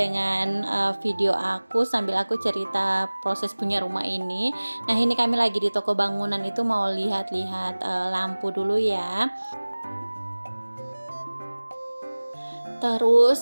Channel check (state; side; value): inverted; both; correlation -1.00